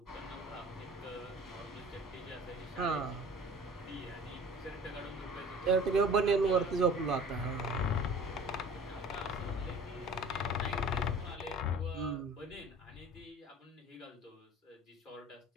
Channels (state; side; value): normal; both; correlation 0.44